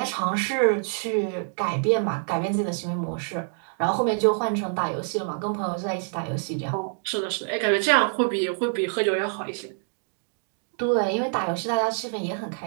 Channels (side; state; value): left; silent; 61 dB below the other